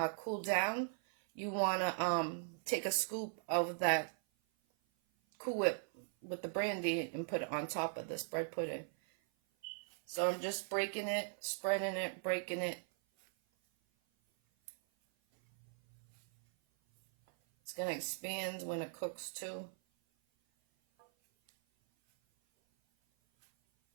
cooled down, you want to take a scoop of that Cool Whip with the brandy and put it on top of this bread pudding. So I'm just breaking it, spreading it, breaking it. It's going to expand when it cooks too.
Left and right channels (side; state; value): left; silent; 52 dB below the other